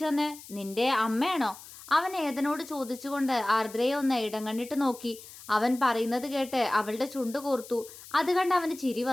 തന്നെ? നിന്റെ അമ്മയാണോ? അവൻ ഏതനോട് ചോദിച്ചുകൊണ്ട് ആർദ്രയെ ഒന്ന് ഇടം കണ്ടിട്ട് നോക്കി. അവൻ പറയുന്നത് കേട്ട് അവളുടെ ചുണ്ട് കോർത്തു. അത് കണ്ട് അവന് ചിരി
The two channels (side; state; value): left; noise; hiss, 17 dB below the sound